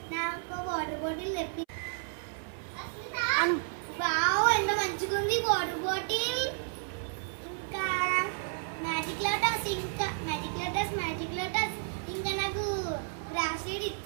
నాకు water bottle తెప్పి. Wow ఎంత మంచిగా ఉంది వాటర్ బాటిల్. ఇంకా మ్యాజిక్ లోటస్ ఇంకా నాకు బ్రాస్లెట్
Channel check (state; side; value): silent; left; 56 dB below the other